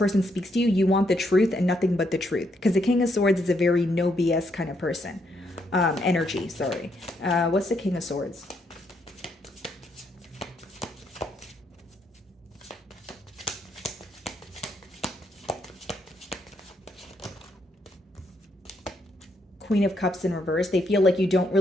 speaks to you, you want the truth and nothing but the truth. Because the King of Swords is a very no BS kind of person. Energy, sorry. What's the King of Swords? Queen of Cups in reverse. They feel like you don't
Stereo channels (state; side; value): normal; both; correlation 0.76